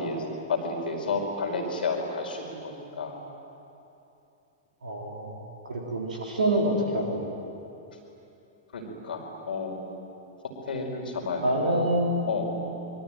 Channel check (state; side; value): inverted; both; correlation -0.39